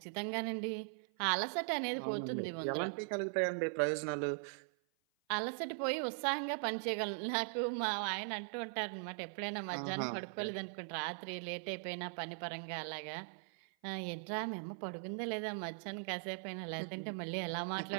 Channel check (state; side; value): silent; left; 51 dB below the other